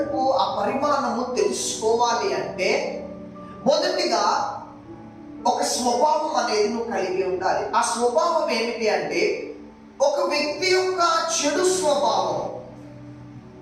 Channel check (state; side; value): identical; both; correlation 1.00